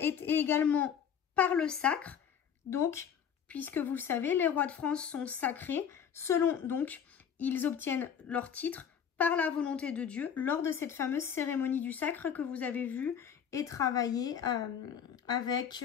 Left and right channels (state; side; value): quieter; right; 8.0 dB